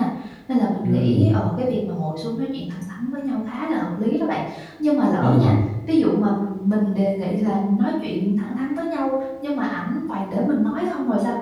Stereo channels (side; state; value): both; identical; correlation 1.00